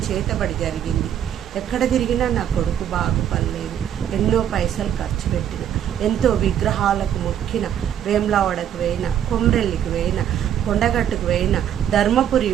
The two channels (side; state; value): left; quieter; 10.0 dB